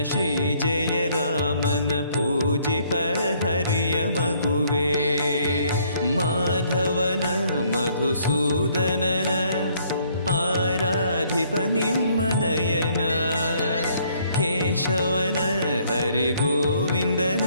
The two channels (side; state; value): both; inverted; correlation -0.65